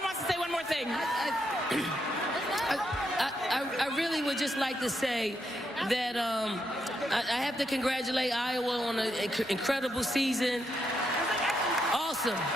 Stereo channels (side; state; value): both; normal; correlation 0.80